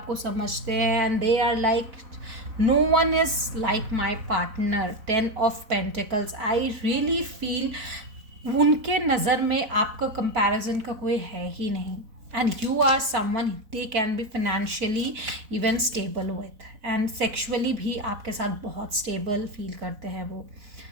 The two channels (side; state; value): left; late; 4.0 ms